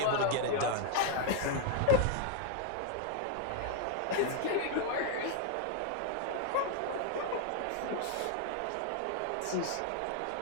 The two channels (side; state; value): both; different; correlation 0.00